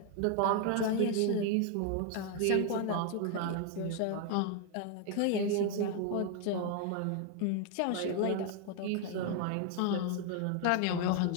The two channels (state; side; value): different; both; correlation 0.01